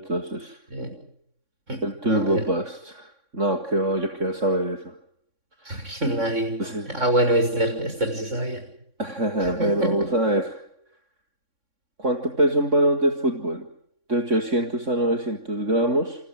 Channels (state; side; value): late; left; 3.6 ms